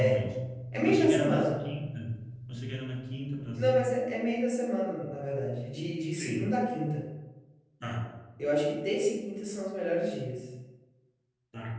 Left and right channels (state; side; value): identical; both; correlation 1.00